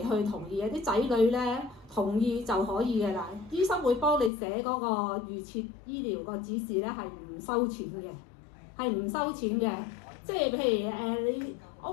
同意嘅，啲仔女咧同意就可以嘅啦。醫生會幫你寫嗰個預設醫療個指示咧，係唔收錢嘅，即係譬如你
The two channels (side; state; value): right; drops out; at 4.3 s